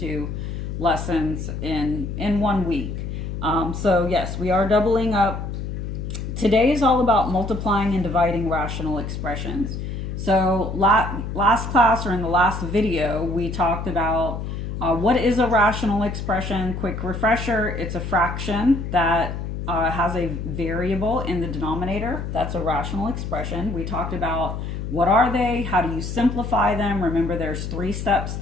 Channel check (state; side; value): noise; left; hum, 5 dB below the sound